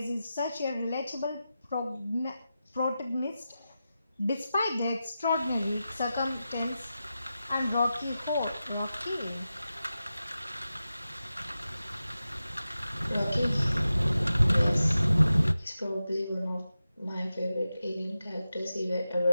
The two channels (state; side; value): inverted; both; correlation -0.92